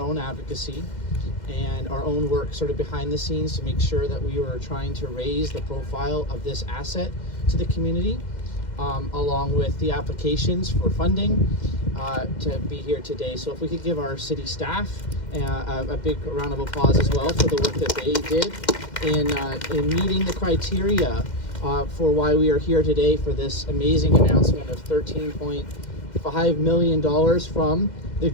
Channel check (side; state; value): right; late; 2.1 ms